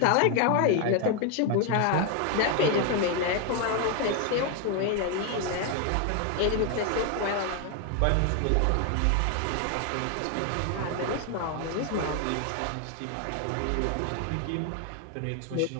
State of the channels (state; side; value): different; both; correlation 0.01